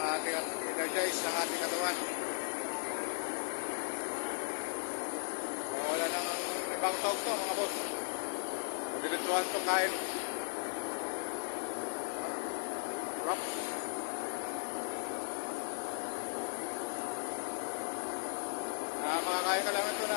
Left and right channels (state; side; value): silent; right; digital silence